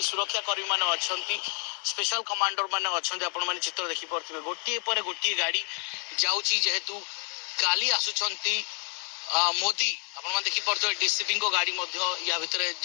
सुरक्षा कर्मी माने अछंती स्पेशल कमांडर माने अछंती। आपण माने चित्र देखि पारुथिबे गोटे पर गोटे गाड़ी जाउची जेहेतु काली आसुचंती मोदी आपण देखी पारे डीसीपी को गाड़ी या भितर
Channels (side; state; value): right; quieter; 39.5 dB